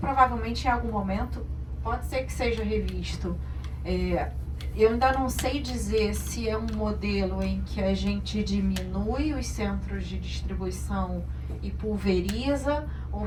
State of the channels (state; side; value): identical; both; correlation 1.00